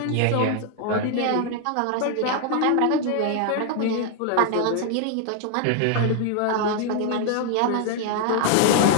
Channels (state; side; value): different; both; correlation 0.00